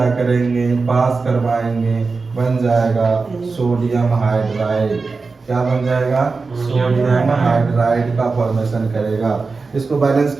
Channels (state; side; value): quieter; left; 4.2 dB